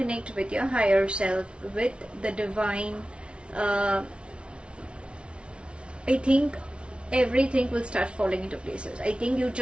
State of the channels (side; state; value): left; late; 0.058 ms